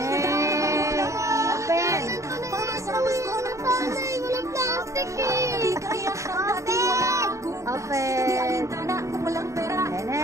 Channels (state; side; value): late; left; 0.15 ms